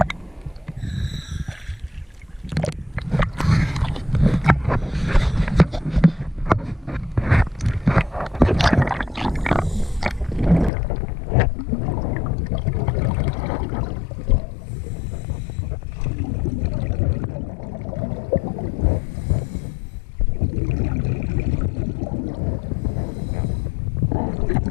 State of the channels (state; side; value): drops out; right; at 10.7 s